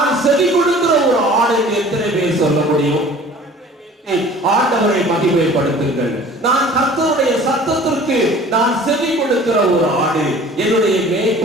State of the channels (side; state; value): both; normal; correlation 0.47